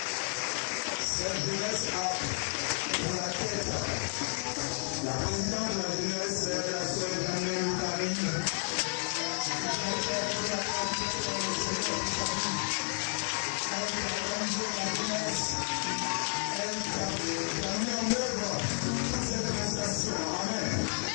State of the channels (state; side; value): silent; right; 57 dB below the other